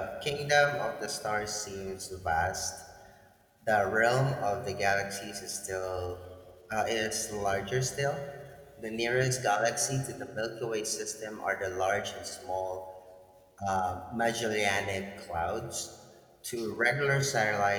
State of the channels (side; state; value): both; identical; correlation 1.00